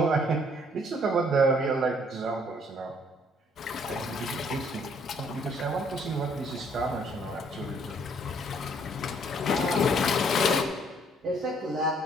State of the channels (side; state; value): both; normal; correlation 0.64